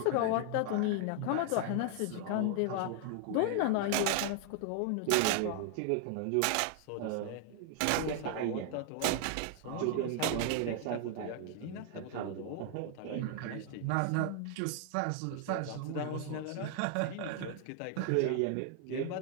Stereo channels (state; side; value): different; both; correlation 0.00